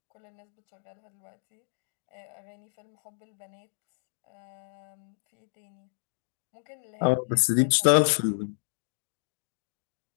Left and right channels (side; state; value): right; silent; digital silence